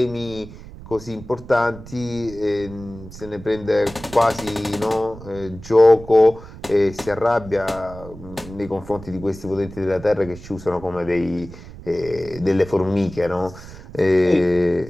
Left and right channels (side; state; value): right; noise; rumble, 16 dB below the sound